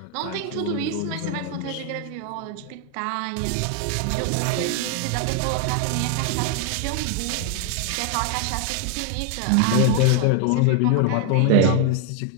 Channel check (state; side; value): different; both; correlation 0.00